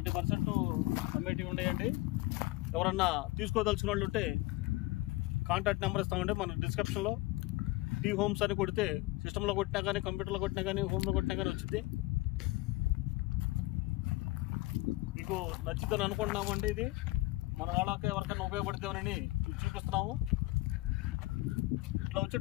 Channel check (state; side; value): quieter; right; 20.1 dB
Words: అమ్మేటివి ఉన్నాయండి. ఎవరన్నా తీసుకోదలుచుకున్న వాళ్ళు ఉంటే కాంటాక్ట్ నెంబర్ ఇస్తామండి మన డిస్క్రిప్షన్లో. టీ హోమ్స్ అని కొడితే సిస్టంలో కొట్టినా కానీ కంప్యూటర్లో కొట్టినా కానీ హోమ్లో కొట్టినా కానీ వచ్చింది. మీకు నచ్చిందని అనుకుంటున్నామండి. ఇది మన వాళ్ళకి ఎవరికైనా ఉపయోగపడుతుందని చూపిస్తున్నాము. ఇట్లా వచ్చే